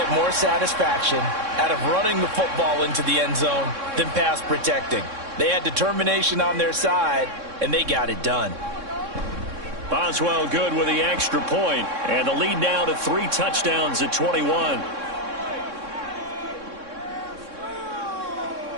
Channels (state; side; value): late; left; 3.6 ms